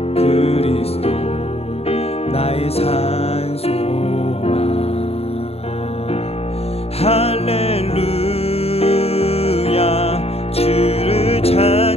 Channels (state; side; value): late; right; 0.29 ms